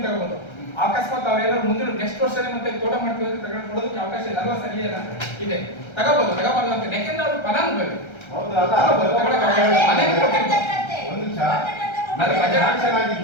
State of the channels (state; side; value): late; right; 1.3 ms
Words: ತಗೋಬಹುದು. ಅಕಸ್ಮಾತ್ ಅವ್ರು ಏನಾದ್ರು ಮುಂದಿನ ನೆಕ್ಸ್ಟ್ ವರ್ಷನೇ ಮತ್ತೆ ತೋಟ ಮಾಡ್ತೀವಿ ಅಂತ ತಗೊಳ್ಳೋದಕ್ಕೆ ಅವಕಾಶ ಇದೆ ಅಲ್ವಾ ಸರ್? ಇದೆ, ತಗೋಬಹುದು, ತಗೋಬಾರ್ದು ಅಂತ. ಯಾಕೆಂದ್ರೆ ಅವ್ರು ಫಲಾನುಭವಿ ಒಂದು ನಿಮಿಷ,